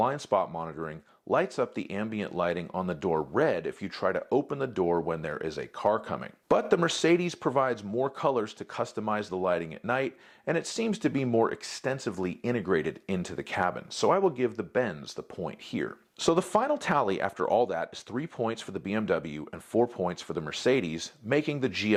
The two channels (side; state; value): both; identical; correlation 1.00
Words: spot monitoring, lights up the ambient lighting on the door red if you try to open the door when there is a car coming. But the Mercedes provides more colors to customize the lighting at night, and it seems to be more extensively integrated into the cabin, so I will give the Benz the point here. So the final tally after all that is 3 points for the BMW and 4 points for the Mercedes, making the